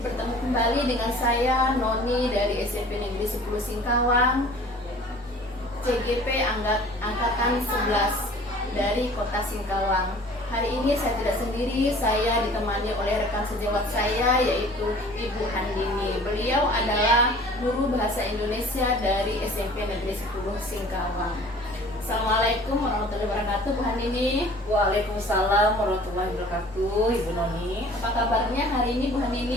Bertemu kembali dengan saya Noni dari SMP Negeri 10 Singkawang, CGP Angkatan 11 dari Kota Singkawang. Hari ini saya tidak sendiri, saya ditemani oleh rekan sejawat saya yaitu Ibu Handini. Beliau adalah guru bahasa Indonesia dari SMP Negeri 10 Singkawang. Assalamualaikum warahmatullahi wabarakatuh, Bu Handini. Waalaikumsalam warahmatullahi wabarakatuh, Ibu Noni. Apa kabarnya hari ini, Bu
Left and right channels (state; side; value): normal; both; correlation 0.48